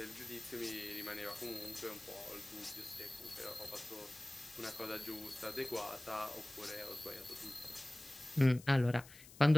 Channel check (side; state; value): left; noise; hiss, 18 dB below the sound